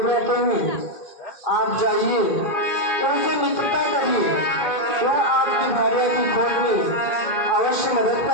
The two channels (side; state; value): right; late; 2.5 ms